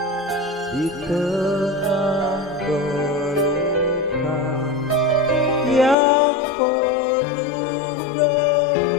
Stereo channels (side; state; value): right; drops out; at 6.0 s